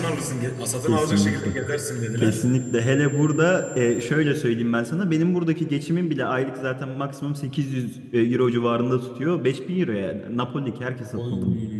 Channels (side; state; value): both; identical; correlation 1.00